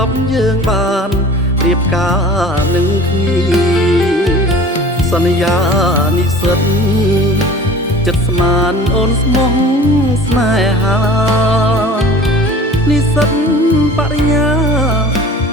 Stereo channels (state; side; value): normal; both; correlation 0.43